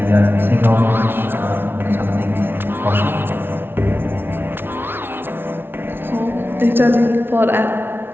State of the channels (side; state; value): left; late; 0.11 ms